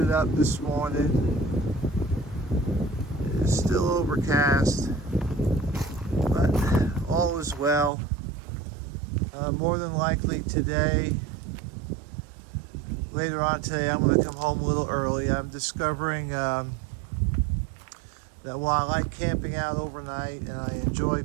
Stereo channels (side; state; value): left; drops out; at 7.9 s